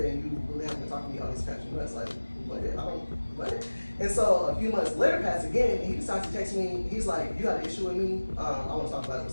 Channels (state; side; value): inverted; both; correlation -1.00